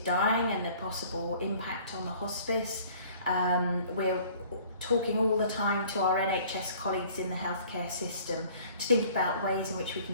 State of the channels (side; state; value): both; inverted; correlation -0.52